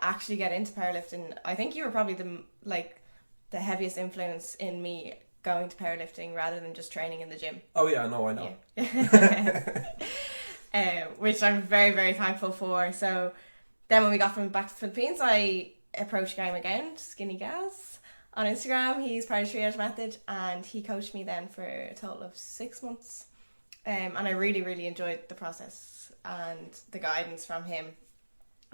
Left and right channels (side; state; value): both; inverted; correlation -1.00